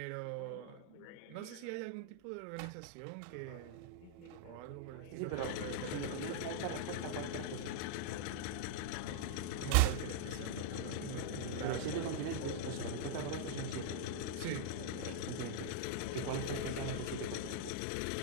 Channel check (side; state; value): both; different; correlation -0.01